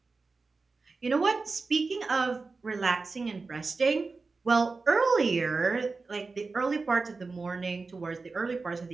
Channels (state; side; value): quieter; left; 4.1 dB